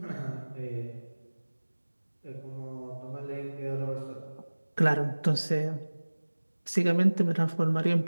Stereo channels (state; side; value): inverted; both; correlation -1.00